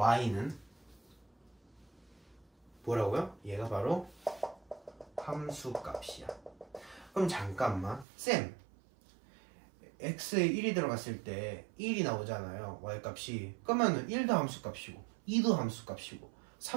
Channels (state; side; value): drops out; left; at 8.1 s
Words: 뭐라고요? 얘가 바로 함수값이야. 그럼 잠깐만 쌤 x에 1이 들어갔을 때 1이 나오잖아요. y값이. 그러면 1도 함수값이고 2도 함수값이고